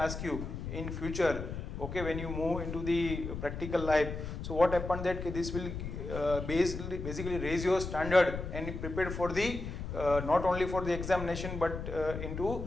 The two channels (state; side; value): noise; left; rumble, 6 dB below the sound